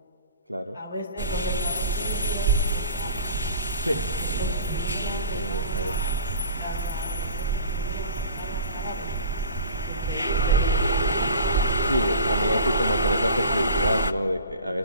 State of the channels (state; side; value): inverted; both; correlation -0.40